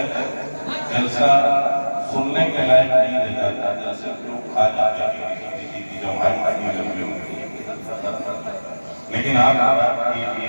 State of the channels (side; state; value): both; inverted; correlation -1.00